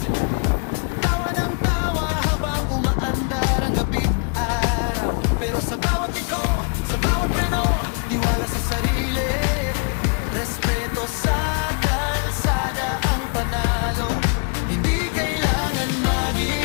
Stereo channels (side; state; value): right; quieter; 37.9 dB